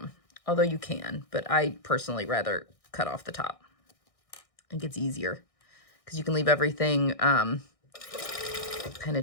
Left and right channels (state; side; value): late; right; 1.6 ms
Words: Although you can, but I personally rather cut off the top. I think it's easier because you can leave everything kind